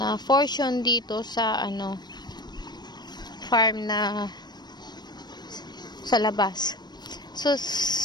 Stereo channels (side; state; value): right; late; 0.21 ms